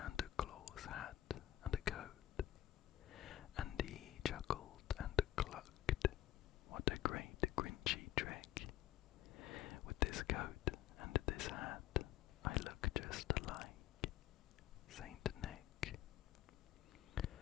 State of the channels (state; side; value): quieter; right; 13.1 dB